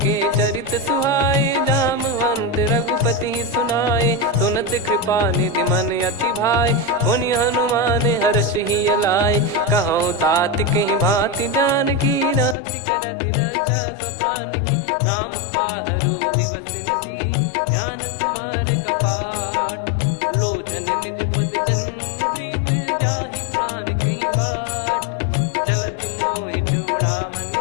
चरित सुहाए, जामवंत रघुपति सुनाए। सुनत कृपा निधि मन अति भाई, पुनि हनुमान हर्ष ही लाए। कहूँ तात कहीं भांति जानकी, रहति करति रक्षा सो प्राण की। नाम पाहरु दिवस निसी, ज्ञान तुम्हारे कपाट। लोचन निज पद जंत्रित, जाहि प्राण कहीं बाट। चलति मोहि चूड़ामन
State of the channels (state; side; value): drops out; right; at 12.6 s